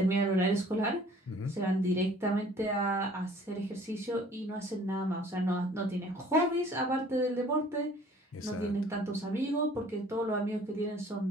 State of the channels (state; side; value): normal; both; correlation 0.53